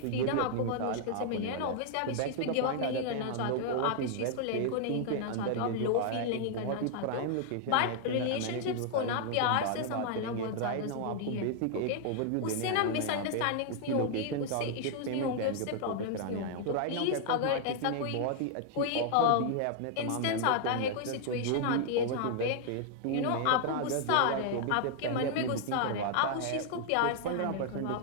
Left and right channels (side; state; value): both; different; correlation 0.00